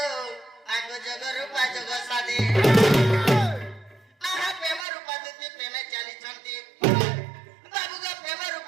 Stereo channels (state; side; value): drops out; left; at 4.9 s